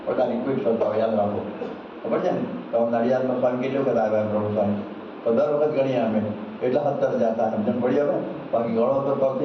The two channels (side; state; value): both; identical; correlation 1.00